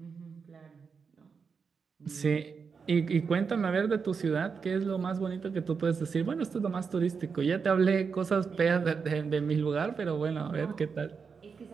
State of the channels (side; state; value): left; quieter; 5.6 dB